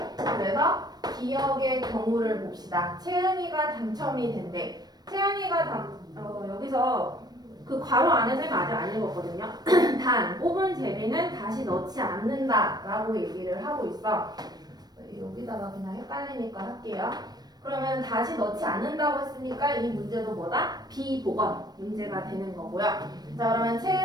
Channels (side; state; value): left; late; 0.19 ms